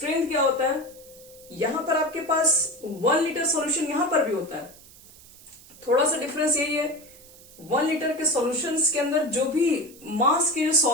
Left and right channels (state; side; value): noise; right; hiss, 22 dB below the sound